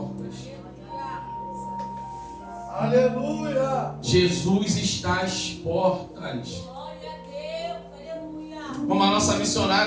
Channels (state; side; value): identical; both; correlation 1.00